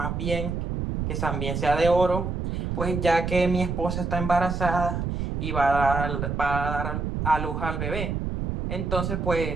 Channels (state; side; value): noise; right; rumble, 2 dB below the sound